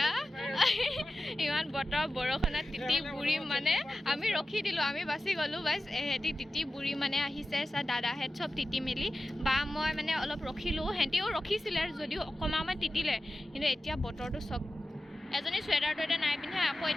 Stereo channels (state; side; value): normal; both; correlation 0.94